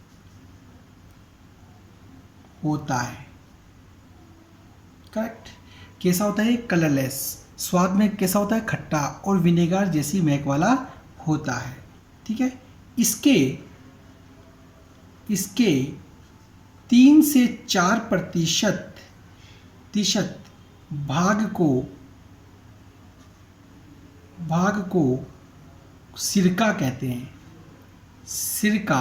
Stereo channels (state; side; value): identical; both; correlation 1.00